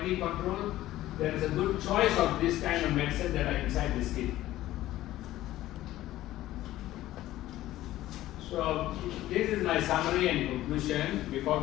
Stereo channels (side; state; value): right; quieter; 15.0 dB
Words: control, there is a good choice of this kind of medicine that are inside this kit. So this is my summary and conclusion before